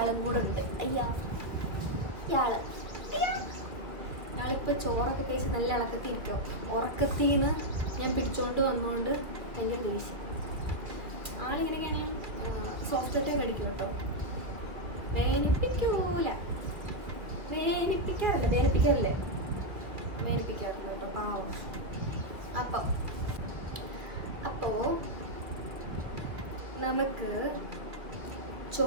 കൂടെ ഉണ്ട്. ഇയാളിപ്പോൾ ചോറൊക്കെ കഴിച്ച് നല്ല ഇളക്കത്തിരിക്കും. ഉറക്കത്തിൽ നിന്ന് ഞാൻ പിടിച്ചോണ്ട് വന്നുകൊണ്ട് ഭയങ്കര ദേഷ്യം. ആളിങ്ങനെയൊക്കെയാണെങ്കിൽ സോഫ്റ്റ് കടിക്കും കേട്ടോ. വേനിപ്പിക്കാറില്ല കേട്ടോ, പാവം. അപ്പോൾ നമുക്ക്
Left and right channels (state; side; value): late; left; 2.1 ms